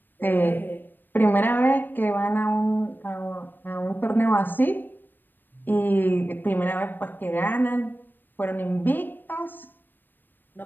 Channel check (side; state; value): right; late; 0.093 ms